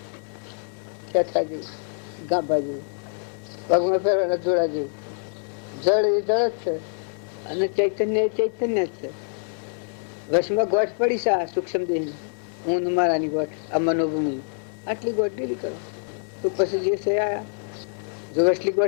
ખેંચા જેવું, ગાભા જેવું, પગમાં ફેરવાના જોડા જેવું. જળ એ જળ જ છે અને ચૈતન્ય એ ચૈતન્ય જ છે. વશમાં ગોઠ પડી છે આ સૂક્ષ્મ દેહ, હું મારાની ગોઠ, આ મનોભૂમિ, આટલી ગોઠ ઢીલી કરો તો પછી જે છે આયા. જો વસલી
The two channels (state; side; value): silent; right; digital silence